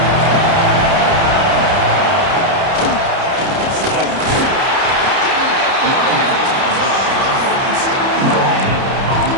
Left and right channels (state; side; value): late; left; 30 ms